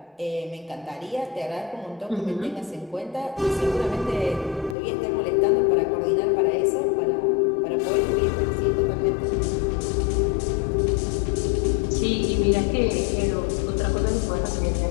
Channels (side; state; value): right; drops out; at 4.8 s